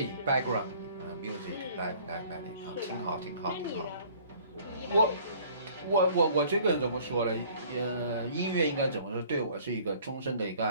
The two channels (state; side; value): inverted; both; correlation -0.54